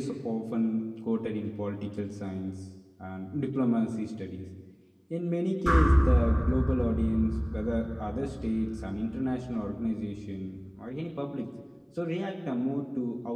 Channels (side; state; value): both; identical; correlation 1.00